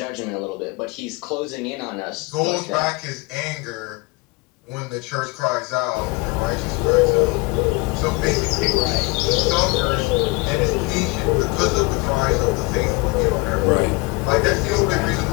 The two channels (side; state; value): right; quieter; 26.0 dB